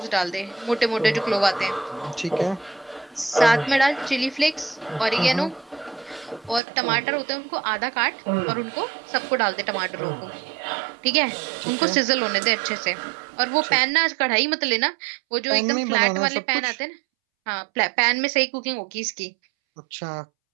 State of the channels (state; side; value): drops out; left; at 6.6 s